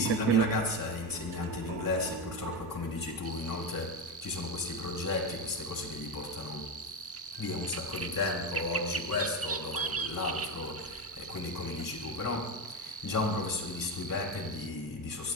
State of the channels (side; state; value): both; normal; correlation 0.16